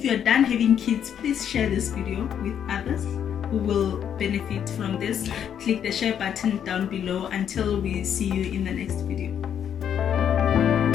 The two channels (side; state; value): right; quieter; 8.9 dB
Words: done having kids, please share this video with others who will benefit from this. Click the share button down below. Until we see you in the next video.